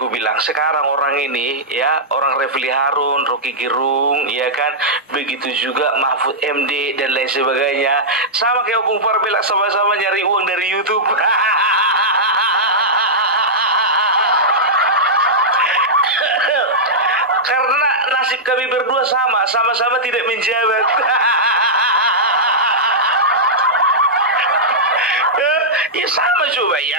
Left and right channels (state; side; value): normal; both; correlation -0.10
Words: bilang, sekarang orang ini ya, orang Refli Harun, Rocky Gerung, ya kan, begitu juga Mahfud MD dan lain sebagainya, sama kayak Opung Parbela, sama-sama nyari uang dari YouTube. Karena nasib kami berdua sama-sama tidak menjabat. Ya sama coba